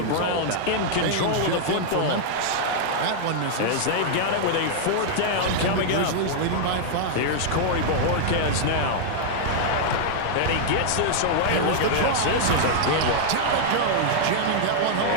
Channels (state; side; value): different; both; correlation -0.01